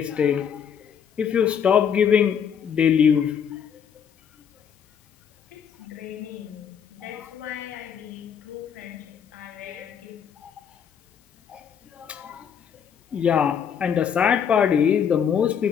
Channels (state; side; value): quieter; right; 7.8 dB